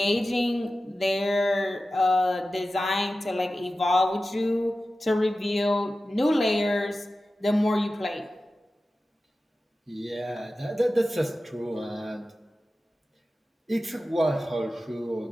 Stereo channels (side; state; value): both; normal; correlation 0.94